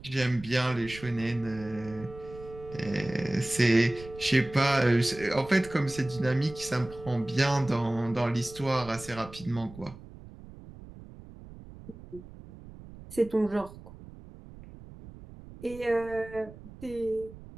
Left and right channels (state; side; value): noise; right; rumble, 17 dB below the sound